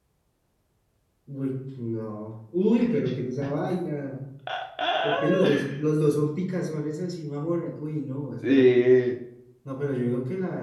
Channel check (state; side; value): identical; both; correlation 1.00